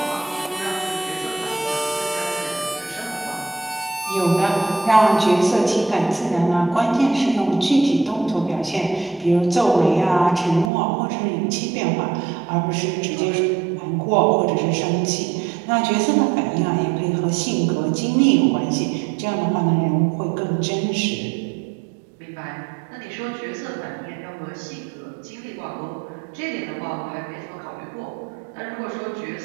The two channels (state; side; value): drops out; left; at 10.7 s